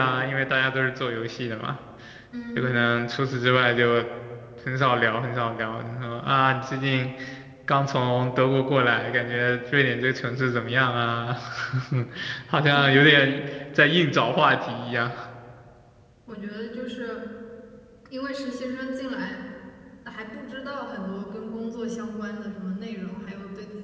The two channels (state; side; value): identical; both; correlation 1.00